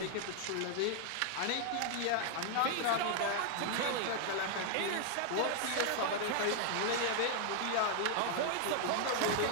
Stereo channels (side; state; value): both; different; correlation 0.00